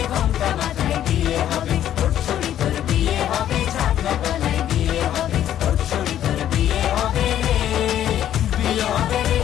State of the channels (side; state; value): right; quieter; 11.2 dB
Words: ঘোমটা মাথায় বিয়ে হবে। ওর ছুরি তোর বিয়ে হবে, ছাগনা তলায় বিয়ে হবে। ওর ছুরি তোর বিয়ে হবে রে, বিয়ে হবে রে,